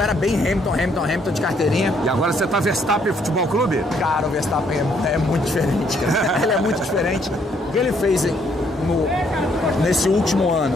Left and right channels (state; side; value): normal; both; correlation 0.69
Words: bem Hamilton de carteirinha. E agora você tá Verstappen Futebol Clube? Cara, o Verstappen é muito diferente. Ele é muito diferente. O que ele fez nesse último ano,